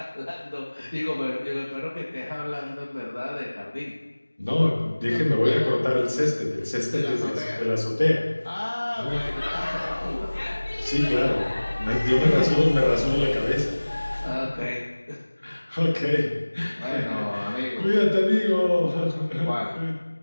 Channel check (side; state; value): both; inverted; correlation -1.00